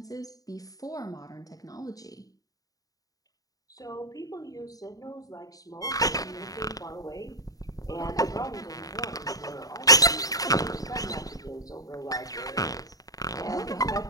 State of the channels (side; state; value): right; late; 0.18 ms